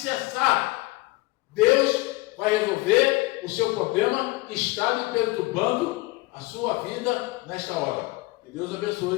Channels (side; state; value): right; quieter; 21.6 dB